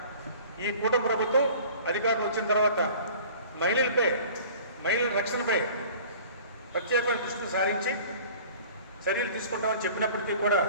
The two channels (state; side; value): inverted; both; correlation -0.46